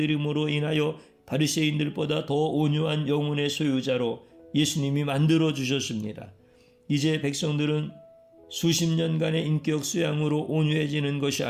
인하여 바리새인들보다 더 온유한 영혼의 소유자로 예수님이 만들어 주셨습니다. 이제 백성들은 수십 년간의 인격 수양으로 온유해지는 것이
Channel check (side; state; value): both; identical; correlation 1.00